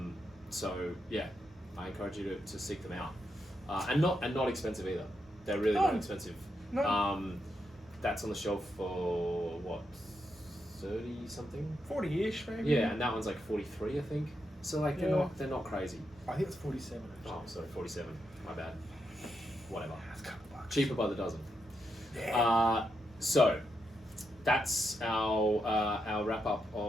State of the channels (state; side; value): normal; both; correlation 0.83